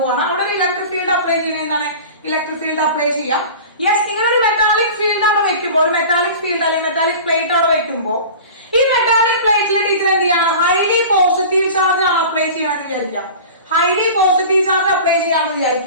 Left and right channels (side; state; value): both; inverted; correlation -0.37